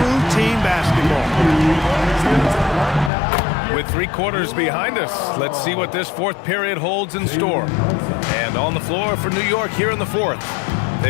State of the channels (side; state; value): right; drops out; at 3.1 s